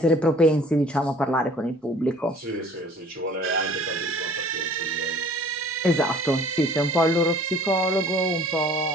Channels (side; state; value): both; normal; correlation 0.51